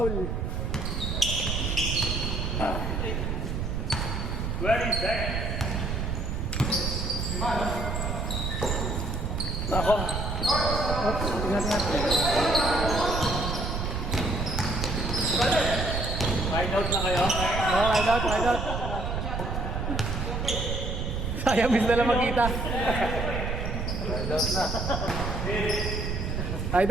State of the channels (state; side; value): noise; right; rumble, 2 dB below the sound